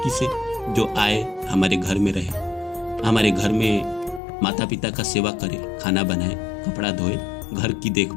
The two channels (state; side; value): drops out; right; at 4.2 s